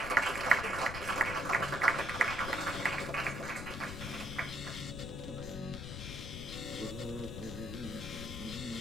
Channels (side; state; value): left; noise; rumble, 7 dB below the sound